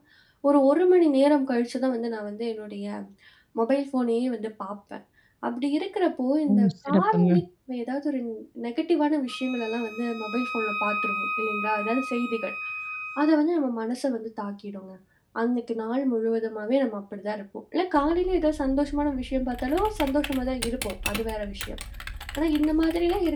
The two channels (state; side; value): identical; both; correlation 1.00